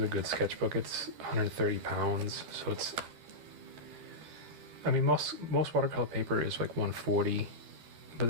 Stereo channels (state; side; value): late; left; 12 ms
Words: a good sketchbook. It's 130 pounds, so it's. I mean, most watercolor paper is like 140, but